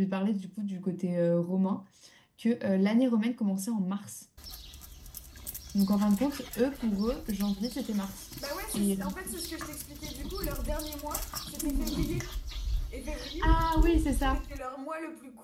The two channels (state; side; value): identical; both; correlation 1.00